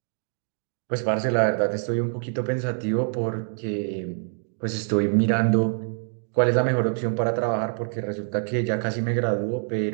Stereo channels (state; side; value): silent; left; 59 dB below the other